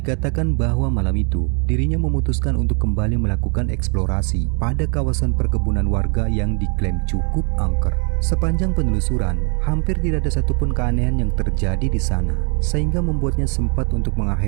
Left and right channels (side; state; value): left; quieter; 37.7 dB